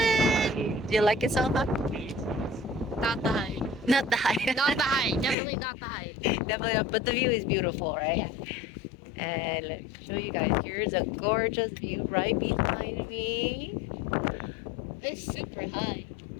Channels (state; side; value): drops out; right; at 5.4 s